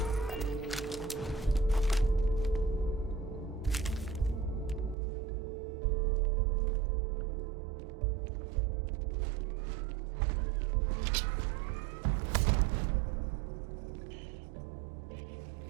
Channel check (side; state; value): left; drops out; at 5.0 s